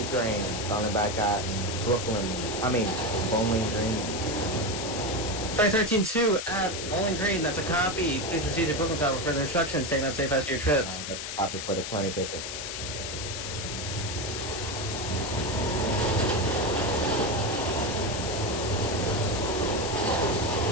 train coming back at Bowling Green. 2013 2 at Bowling Green. That's a copy. Please proceed to Brooklyn Tower for further instructions. Take a safe rest of your trip. That's a copy for the 2013.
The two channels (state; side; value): noise; left; hiss, 6 dB below the sound